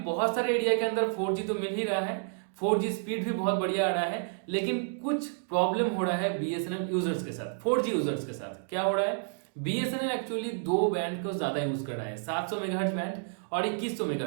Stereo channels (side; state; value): left; silent; digital silence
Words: बहुत सारे एरिया के अंदर 4G तो मिल ही रहा है, 4G स्पीड भी बहुत बढ़िया आ रहा है, लेकिन कुछ प्रॉब्लम हो रहा है BSNL यूजर्स के साथ, 4G यूजर्स के साथ। क्या हो रहा है? BSNL एक्चुअली 2 बैंड को ज्यादा यूज कर रहा है, 700 मेगाहर्ट्ज बैंड और 2100